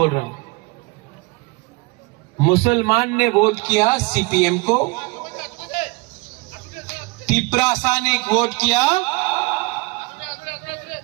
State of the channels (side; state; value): left; quieter; 25.1 dB